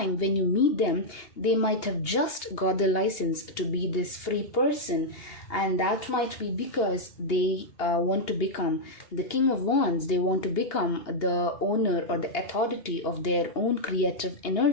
when you meet them, they might have just got the license to be this free person, and that might be because they want to become the King of Wands. They want to become the owner or the authority of their own creative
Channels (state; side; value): late; right; 2.8 ms